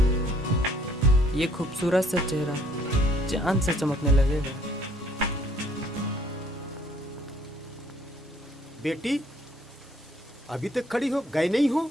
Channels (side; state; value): both; normal; correlation 0.62